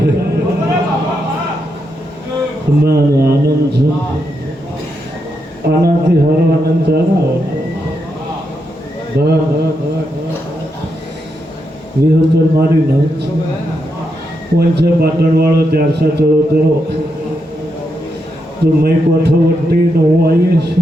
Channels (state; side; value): normal; both; correlation 0.83